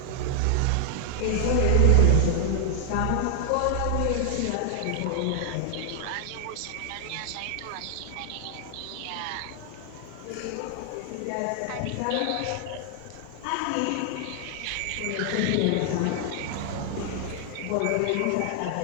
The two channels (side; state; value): both; different; correlation 0.00